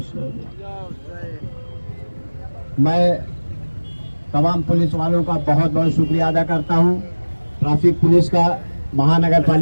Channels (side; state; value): both; inverted; correlation -1.00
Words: میں تمام پولیس والوں کا بہت بہت شکریہ ادا کرتا ہوں۔ ٹریفک پولیس کا، مہانگر